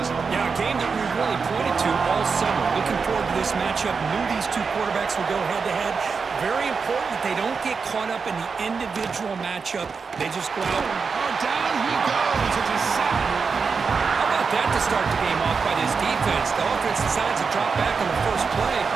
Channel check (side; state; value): left; quieter; 5.2 dB